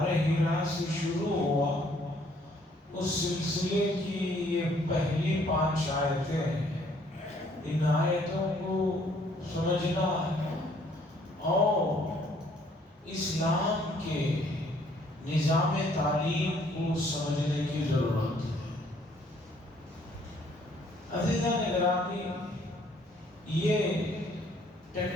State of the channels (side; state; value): both; normal; correlation 0.63